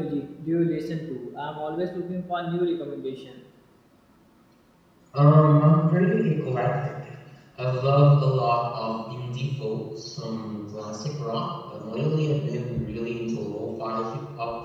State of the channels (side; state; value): both; identical; correlation 1.00